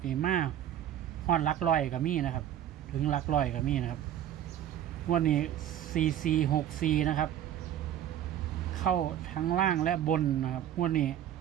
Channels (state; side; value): quieter; left; 11.0 dB